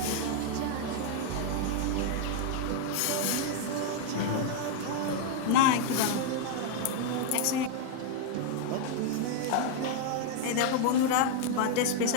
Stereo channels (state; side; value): different; both; correlation 0.00